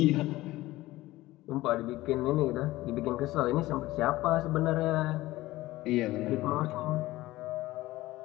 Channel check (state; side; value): quieter; right; 17.6 dB